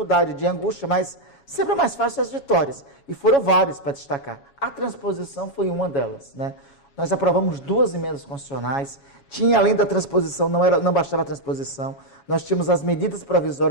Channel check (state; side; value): late; right; 7.2 ms